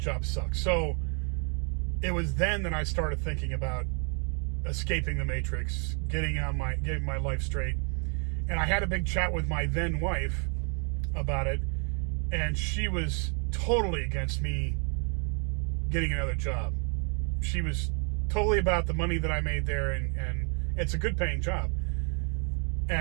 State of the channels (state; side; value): quieter; left; 39.1 dB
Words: sucked. So it was then that I started thinking about escaping the matrix, getting my life straight. And I had a big chat with my then wife about it, and she was totally against me getting another job. She was totally about the money that I made there, and it's a good paying job,